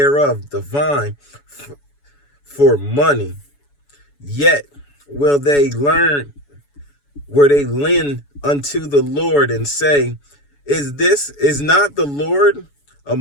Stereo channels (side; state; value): right; late; 7.0 ms